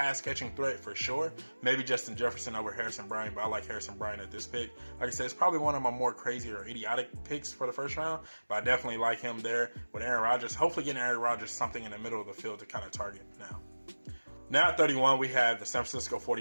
threat for sure. Maybe Justin Jefferson over Harrison Bryant, but I like Harrison Bryant at this pick. Like I said, it's probably one of my more crazy or idiotic picks for the first round, but I definitely like him there with Aaron Rodgers. Hopefully getting Aaron Rodgers something in the middle of the field to kind of target now. Now at 31, we have the San Francisco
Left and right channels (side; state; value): both; inverted; correlation -1.00